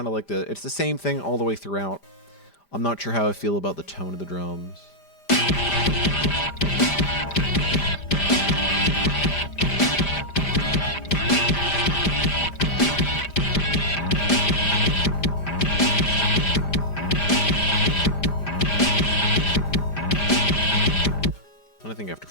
of like it's the same thing all the way throughout. I'm not sure how I feel about the tone of the drums. I think after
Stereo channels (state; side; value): late; right; 5.0 ms